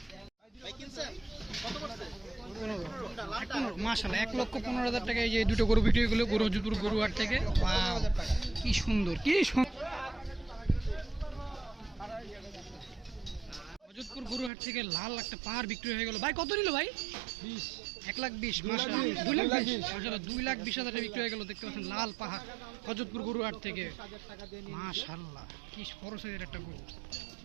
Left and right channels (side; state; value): left; drops out; at 14.5 s